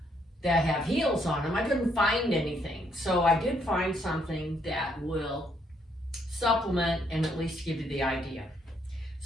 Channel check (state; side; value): normal; both; correlation 0.72